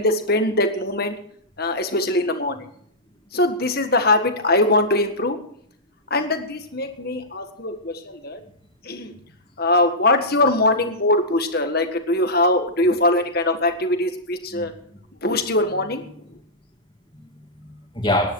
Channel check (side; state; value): both; normal; correlation -0.13